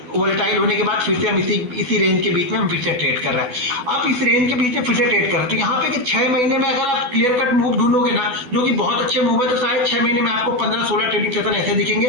वोलेटाइल होने के बाद फिर से हम इसी रेंज के बीच में हम फिर से ट्रेड कर रहे हैं। आप इस रेंज के बीच में फिर से ट्रेड कर रहे हैं, तो यहाँ पे कि 6 महीने में अगर आप क्लियर कट मूव ढूंढोगे ना, जो कि बहुत अच्छे मूव है, तो शायद 6 महीने में आपको 15-16 ट्रेडिंग सेशन ऐसे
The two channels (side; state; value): left; late; 12 ms